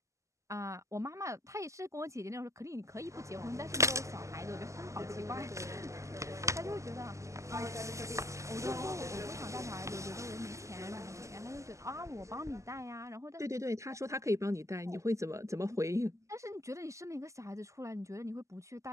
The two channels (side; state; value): left; late; 0.15 ms